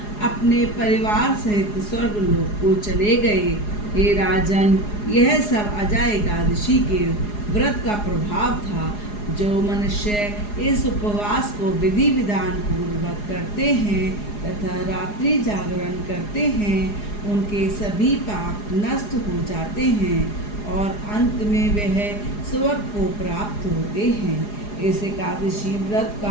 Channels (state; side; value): late; right; 4.8 ms